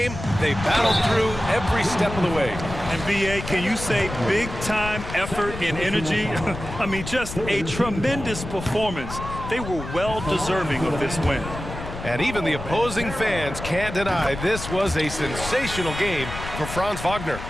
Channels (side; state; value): left; noise; rumble, 9 dB below the sound